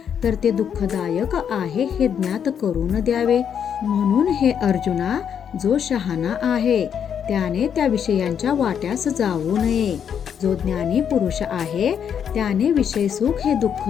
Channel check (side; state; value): right; quieter; 8.1 dB